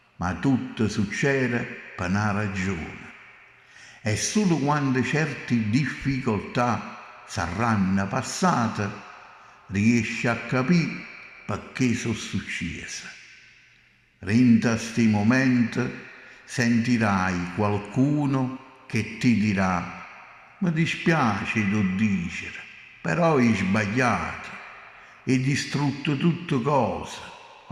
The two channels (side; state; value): both; identical; correlation 1.00